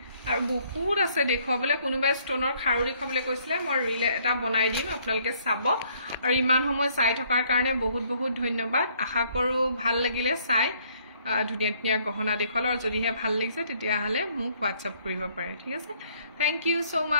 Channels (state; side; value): inverted; both; correlation -0.65